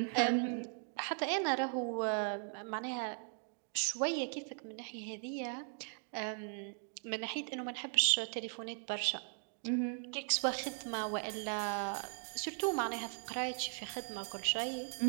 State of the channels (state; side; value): silent; left; 52 dB below the other